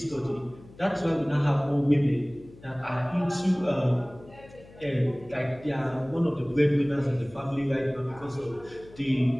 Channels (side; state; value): left; noise; hum, 21 dB below the sound